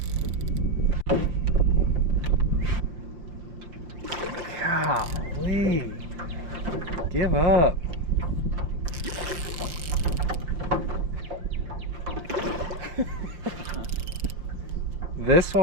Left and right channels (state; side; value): late; left; 5.8 ms